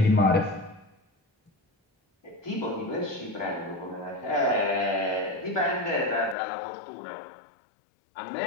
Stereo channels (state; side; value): drops out; right; at 6.4 s